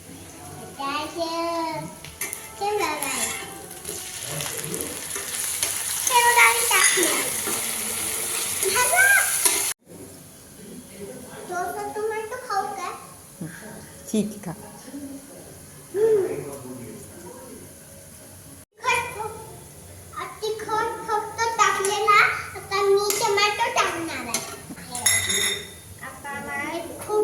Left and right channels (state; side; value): identical; both; correlation 1.00